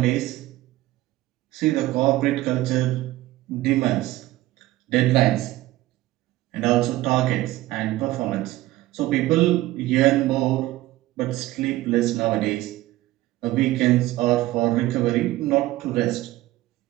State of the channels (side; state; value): left; quieter; 16.9 dB